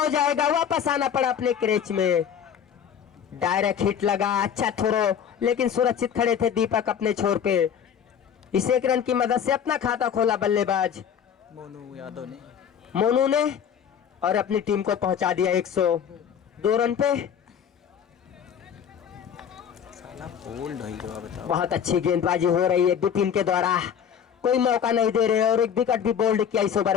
जाएगा, वापस आना पड़ा अपने क्रेच में। डायरेक्ट हिट लगा, अच्छा थ्रो, लेकिन सुरक्षित खड़े थे दीपक अपने छोर पे। इस 1 रन की मदद से अपना खाता खोला बल्लेबाज मोनू यादव ने। मोनू ने, और अपनी टीम को पहुंचा दिया 102 रन पे। साला बोल्ड हो गया, बताओ। बहुत अच्छी गेंदबाजी हो रही है विपिन के द्वारा, कोई मौका नहीं दे रहे, और 1 विकेट भी बोल्ड किया इस ओवर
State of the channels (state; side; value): quieter; right; 8.2 dB